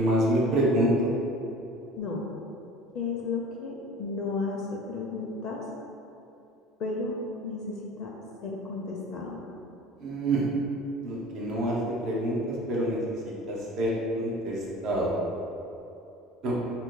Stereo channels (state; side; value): normal; both; correlation 0.42